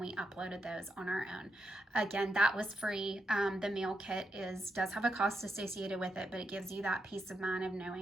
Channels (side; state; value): both; normal; correlation 0.83